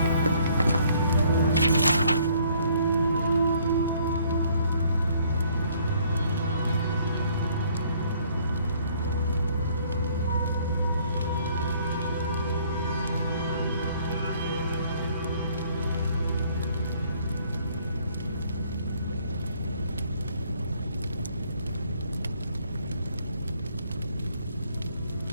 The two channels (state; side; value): inverted; both; correlation -0.62